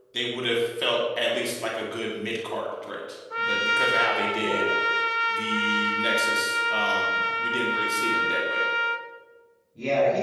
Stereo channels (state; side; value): identical; both; correlation 1.00